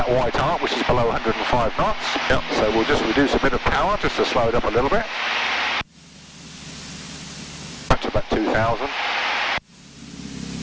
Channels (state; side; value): identical; both; correlation 1.00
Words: white arc, which is below 105 knots. Yep. So we'll just reduce a bit of power just to slow it up a little bit. Back to about 2,000.